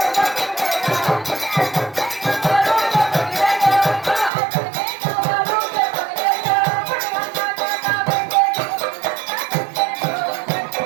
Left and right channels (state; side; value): drops out; left; at 4.3 s